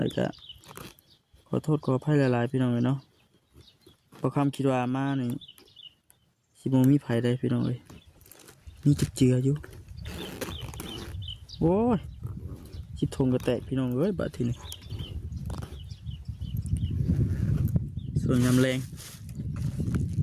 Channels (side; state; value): both; identical; correlation 1.00